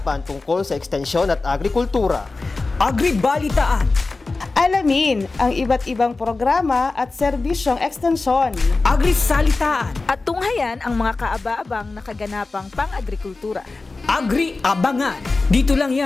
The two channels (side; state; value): right; quieter; 3.6 dB